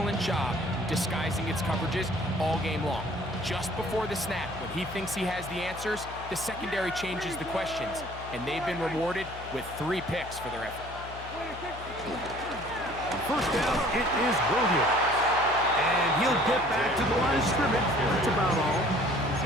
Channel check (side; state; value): left; noise; hum, 14 dB below the sound